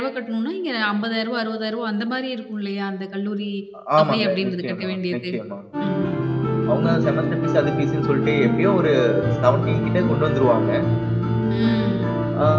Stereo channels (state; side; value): identical; both; correlation 1.00